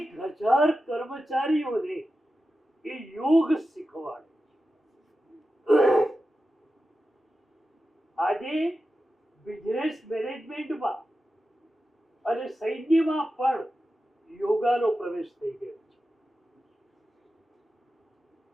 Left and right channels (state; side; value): normal; both; correlation 0.92